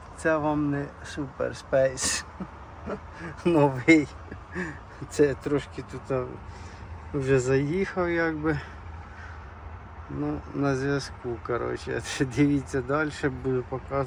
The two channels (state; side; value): identical; both; correlation 1.00